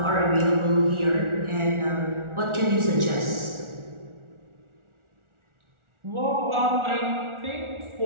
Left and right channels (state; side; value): late; left; 1.4 ms